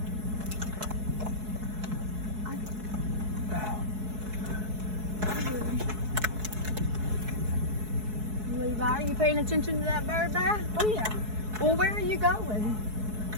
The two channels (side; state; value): left; late; 4.7 ms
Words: Levi, are you paying attention to that bird back? Oh yeah. Well, where are you going?